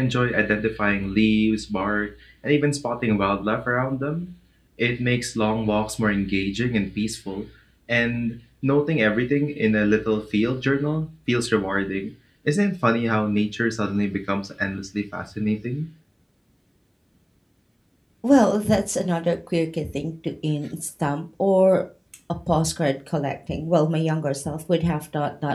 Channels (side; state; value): both; identical; correlation 1.00